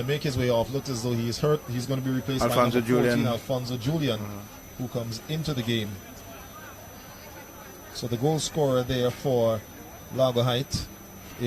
make his way off. Looks as though he is hurt. He's going to be replaced by number 14, Alfonso Julian, who comes into the game. So the goal scorer there for Largo Height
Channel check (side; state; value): both; identical; correlation 1.00